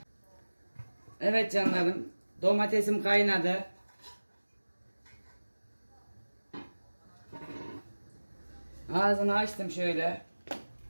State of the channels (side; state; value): both; inverted; correlation -1.00